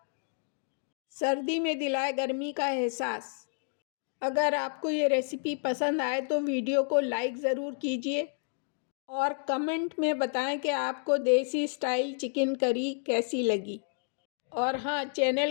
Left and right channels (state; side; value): silent; right; digital silence